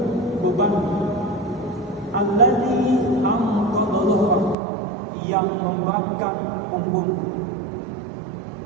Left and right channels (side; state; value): left; drops out; at 4.5 s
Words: beban alladzi anqadha dhahrak, yang memberatkan punggung.